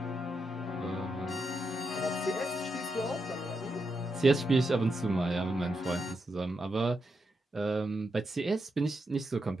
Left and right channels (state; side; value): normal; both; correlation 0.84